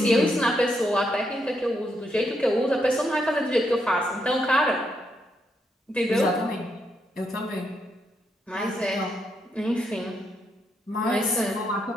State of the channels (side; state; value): both; normal; correlation 0.79